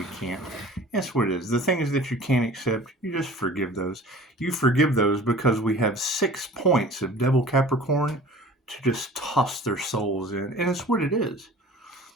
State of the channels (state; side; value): normal; both; correlation 0.44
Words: can't. That's what it is. The things that you can't accept, you just forgive those. You forgive those because we have 6 points of Devil Capricorn to just toss their souls in. And it's what it is.